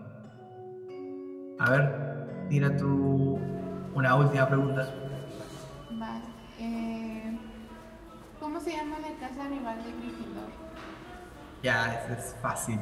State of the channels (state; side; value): identical; both; correlation 1.00